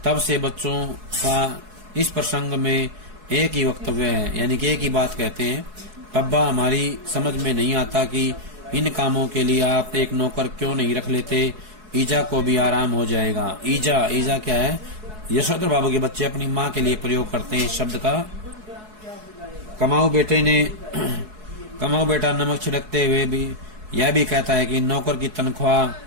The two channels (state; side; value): late; left; 4.7 ms